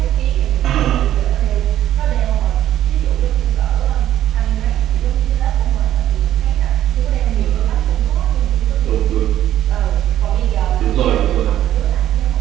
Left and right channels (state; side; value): quieter; left; 12.2 dB